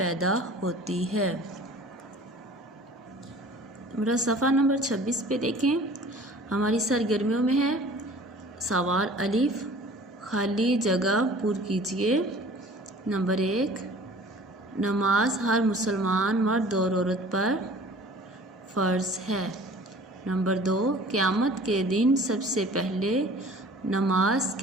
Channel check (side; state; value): both; normal; correlation 0.47